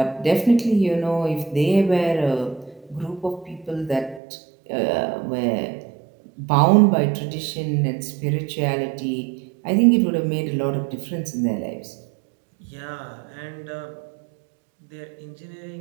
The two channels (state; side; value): drops out; left; at 4.2 s